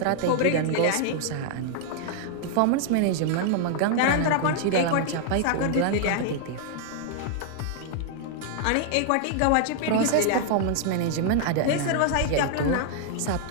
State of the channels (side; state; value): both; different; correlation -0.01